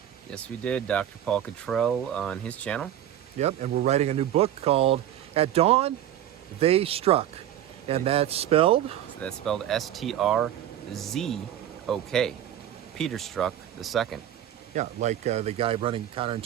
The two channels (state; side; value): quieter; left; 11.3 dB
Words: Yes, we did. Dr. Paul Cottrell on his channel. Yep, and we're writing a new book called At Dawn, They Struck. And that's spelled? That's spelled S-T-R-Z-O-K. Peter Strzok II. Yeah, like the guy running